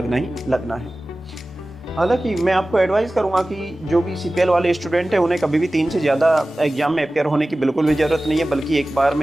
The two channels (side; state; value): both; normal; correlation 0.97